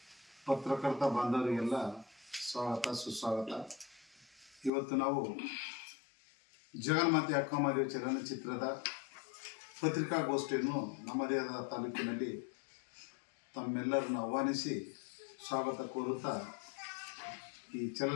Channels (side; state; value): right; drops out; at 4.7 s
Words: ಪತ್ರಕರ್ತ ಬಾಂಧವರಿಗೆಲ್ಲ ಸ್ವಾಗತ ಸುಸ್ವಾಗತ. ಇವತ್ತು ನಾವು ಜಗನ್ಮಾತೆ ಅಕ್ಕಮಹಾದೇವಿ ಚಲನಚಿತ್ರದ ಪತ್ರಿಕಾಗೋಷ್ಠಿಯನ್ನು ನಮ್ಮದೇ ಆದ ತಾಲೂಕಿನಲ್ಲಿ ತಮ್ಮೆಲ್ಲರನ್ನು ಆಹ್ವಾನಿಸಿ ಸ್ವಾಗತ ಕೋರುತ್ತಾ ಈ